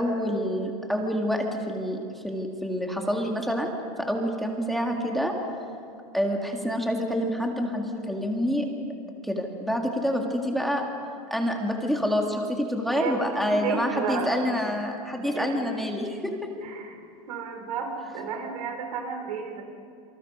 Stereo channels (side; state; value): both; normal; correlation 0.67